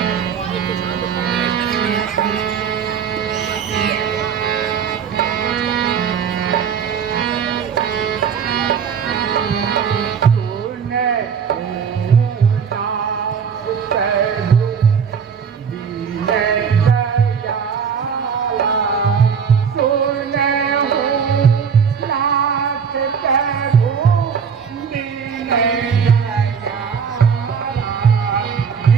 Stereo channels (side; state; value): left; quieter; 6.8 dB